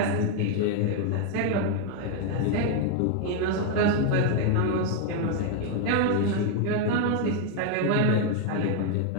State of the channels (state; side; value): different; both; correlation 0.00